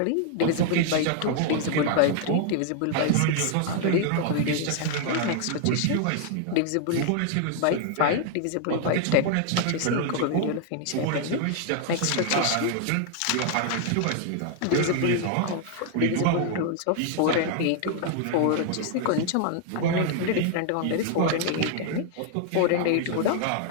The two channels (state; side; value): different; both; correlation 0.00